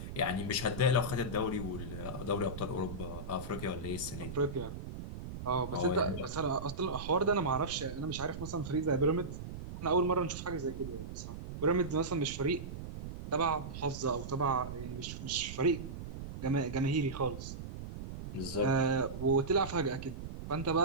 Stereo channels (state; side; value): noise; right; rumble, 8 dB below the sound